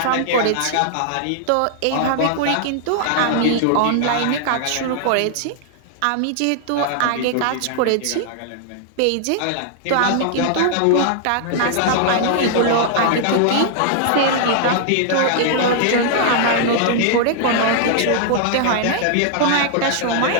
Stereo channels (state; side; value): different; both; correlation 0.00